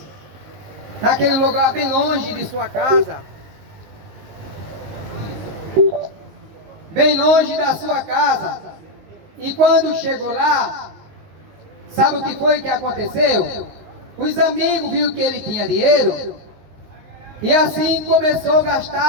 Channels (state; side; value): late; left; 19 ms